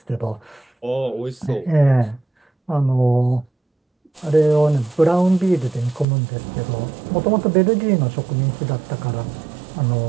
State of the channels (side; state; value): left; drops out; at 6.1 s